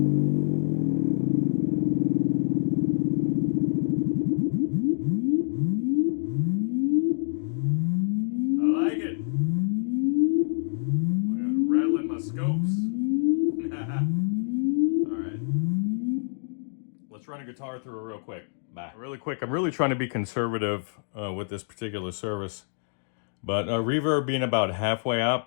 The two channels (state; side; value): silent; right; digital silence